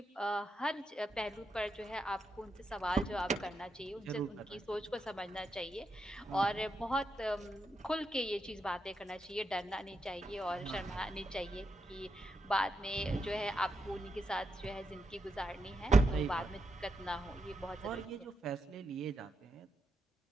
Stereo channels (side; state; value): both; normal; correlation 0.85